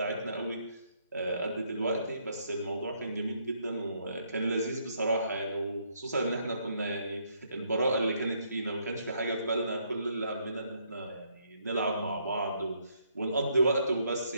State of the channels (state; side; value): inverted; both; correlation -0.72